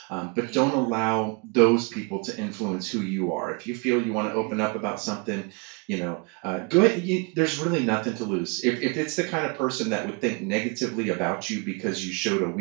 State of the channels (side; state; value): left; quieter; 31.9 dB